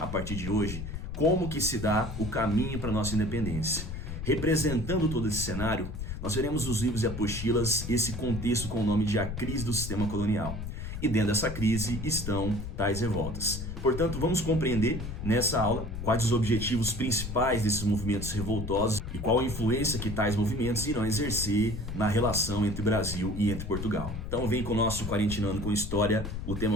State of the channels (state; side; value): noise; left; rumble, 6 dB below the sound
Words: partir de hoje, como que se dá o caminho para a nossa independência. Representando todo esse cenário, nós veremos nos livros e apostilas esse contexto com o nome de A Crise do Sistema Colonial. E dentro dessa crise estão tais revoltas. Portanto, vamos compreender nessa aula quais os objetivos principais desses movimentos revoltosos e qual a influência que tais movimentos irão exercer na relação entre Brasil e entre Portugal. Então vem com o nosso Quarentinando com História, o